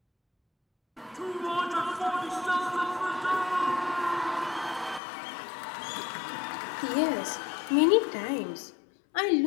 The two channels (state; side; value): drops out; right; at 5.0 s